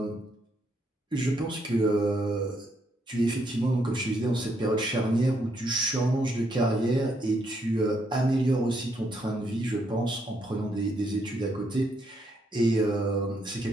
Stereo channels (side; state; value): both; normal; correlation 0.75